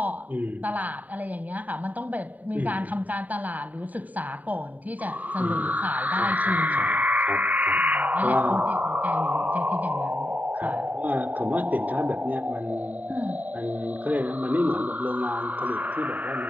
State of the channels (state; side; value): late; left; 0.075 ms